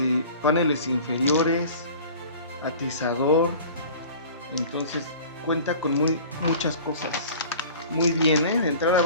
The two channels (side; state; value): both; inverted; correlation -0.42